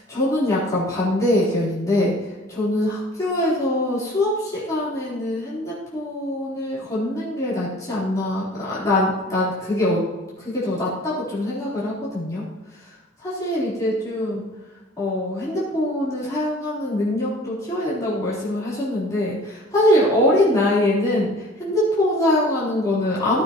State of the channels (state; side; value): normal; both; correlation 0.48